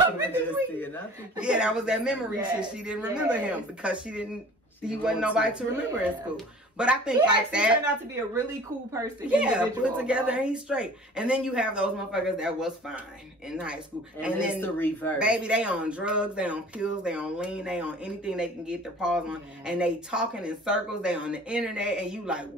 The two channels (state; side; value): normal; both; correlation 0.46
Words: me just between- then. Yeah, that was that memory Yes, shit. She didn't remember yes. him because he wasn't nobody to remember in school. But I think He like actually that. turned out to be a really cool person. Yeah, individual. put together and he's straight. And then you have those motherfuckers that was fine in high school. And then then the reverse. Baby, they on drugs, they on pills, they on lean, they on anything they can get their paws on. Yeah. And they talking in circles, they on the internet, and you like,